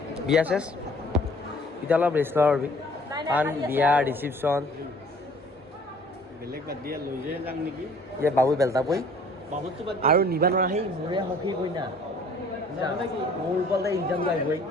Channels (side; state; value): both; normal; correlation 0.54